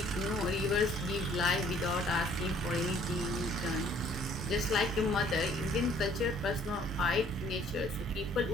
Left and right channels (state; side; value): normal; both; correlation 0.59